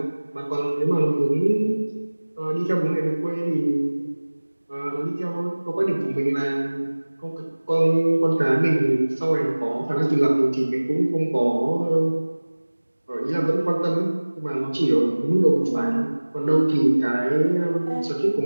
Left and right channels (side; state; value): both; inverted; correlation -1.00